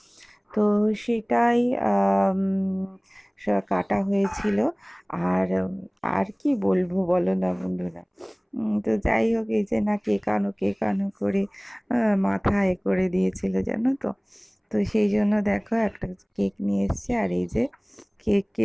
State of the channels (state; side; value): identical; both; correlation 1.00